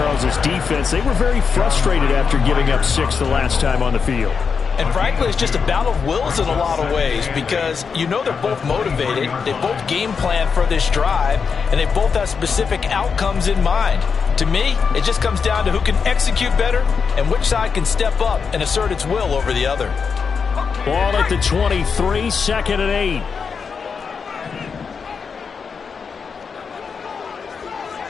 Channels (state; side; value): quieter; right; 5.8 dB